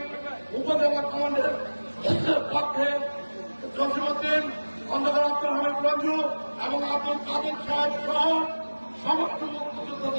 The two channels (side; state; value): both; inverted; correlation -1.00